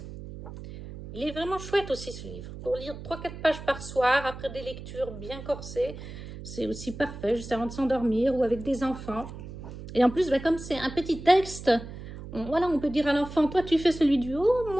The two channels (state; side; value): noise; right; hum, 12 dB below the sound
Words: Il est vraiment chouette aussi ce livre. Pour lire 3-4 pages par soir, après des lectures bien corsées, c'est aussi parfait, juste avant de s'endormir ou avec des enfants. Et en plus, comme c'est un petit texte, voilà, on peut dire à l'enfant, toi tu fais celui du haut,